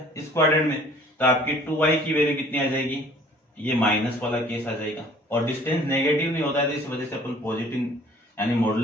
इस क्वाड्रेंट में, तो आपकी 2y की वैल्यू कितनी आ जाएगी, ये माइनस वाला केस आ जाएगा, और डिस्टेंस नेगेटिव नहीं होता है तो इस वजह से अपन पॉजिटिव यानी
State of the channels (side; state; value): both; normal; correlation 0.53